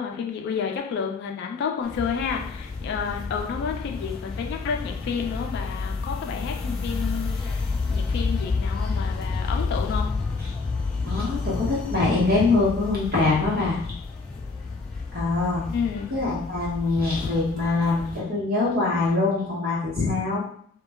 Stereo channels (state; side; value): quieter; right; 3.6 dB